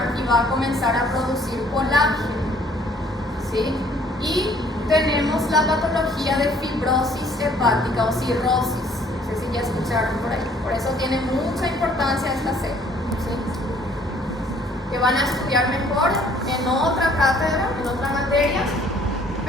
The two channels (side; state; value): both; normal; correlation 0.59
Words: y va a comenzar a producir colágeno, ¿sí? Y tenemos la patología de fibrosis hepática o cirrosis. No sé si ya escucharon por ahí. Por eso tiene mucha importancia esta célula, ¿sí? Que van a estudiar mejor en otra cátedra, en otra materia.